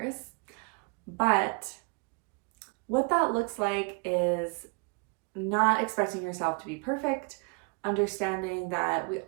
But what that looks like is not expecting yourself to be perfect, understanding that we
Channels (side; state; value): left; quieter; 32.3 dB